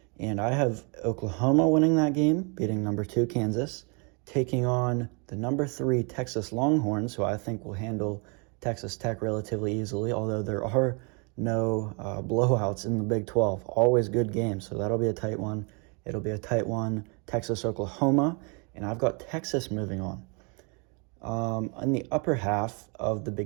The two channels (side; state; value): left; quieter; 33.7 dB